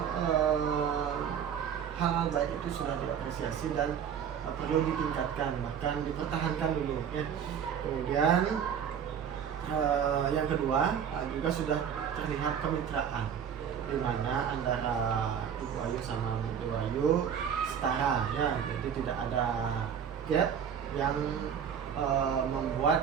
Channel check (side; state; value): left; quieter; 8.1 dB